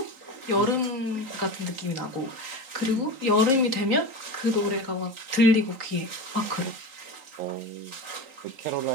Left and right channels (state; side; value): late; left; 3.8 ms